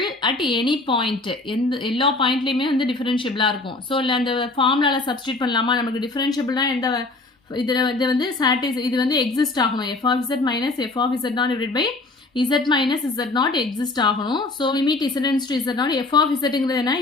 at any point. எல்லா பாயிண்ட்லையுமே வந்து டிஃபரன்ஷியபிளாக இருக்கும். So இல்லை அந்த ஃபார்முலாவில் substitute பண்ணலாமா? நமக்கு டிஃபரன்ஷியபிள்னா எந்த இதில் இது வந்து இது வந்து எக்ஸிஸ்ட் ஆகணும். f of z minus f of z naught divided by z minus z naught exist ஆகணும். So limit distance to z naught f of zங்கிறது என்ன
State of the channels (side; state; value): right; quieter; 3.2 dB